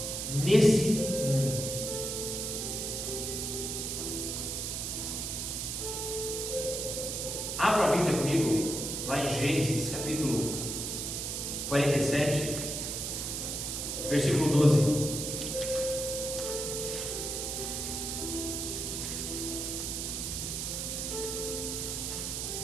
Nesse mundo. Abra a Bíblia comigo, lá em Gênesis, capítulo 47, versículo 12.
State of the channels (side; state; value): right; noise; hiss, 3 dB below the sound